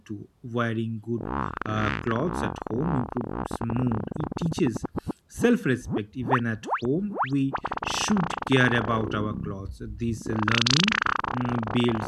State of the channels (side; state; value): both; identical; correlation 1.00